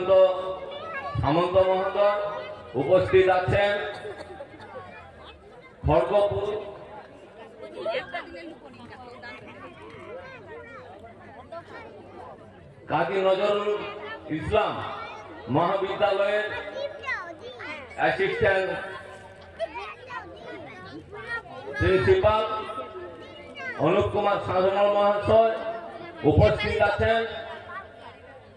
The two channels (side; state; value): both; identical; correlation 1.00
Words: সামন্ত মহোদয়। উপস্থিত আছেন খড়গপুর কাজী নজরুল ইসলাম মহাবিদ্যালয়ের অ্যাসিস্ট্যান্ট প্রিন্সিপাল অনুপ কুমার সাধনা মহাশয়। উপস্থিত আছেন